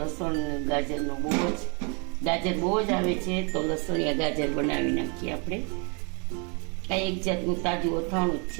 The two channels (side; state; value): left; quieter; 34.8 dB